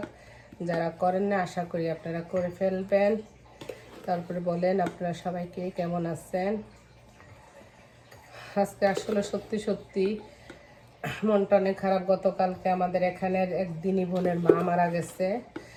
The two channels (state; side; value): identical; both; correlation 1.00